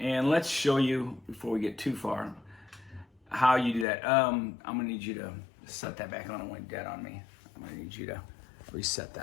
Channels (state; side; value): drops out; right; at 3.9 s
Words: let's show you, before we get too far, how you do that. I'm gonna need you to set that back on. It went dead on me. I'm gonna need you to reset